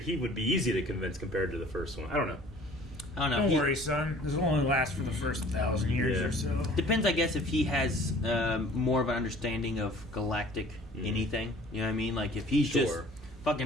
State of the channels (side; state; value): both; normal; correlation 0.50